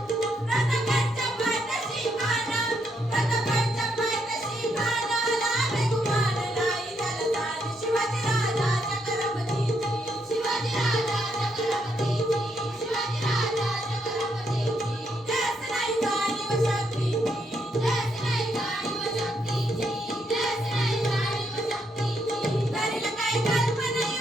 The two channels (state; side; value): normal; both; correlation 0.77